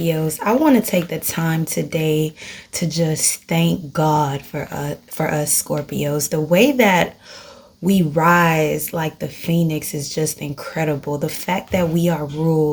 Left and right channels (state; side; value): identical; both; correlation 1.00